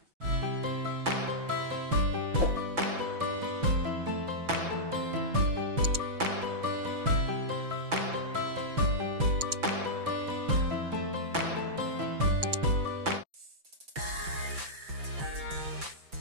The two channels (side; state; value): left; late; 5.9 ms